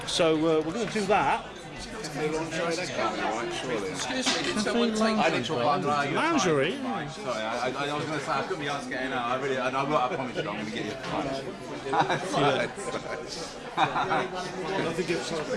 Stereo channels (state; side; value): identical; both; correlation 1.00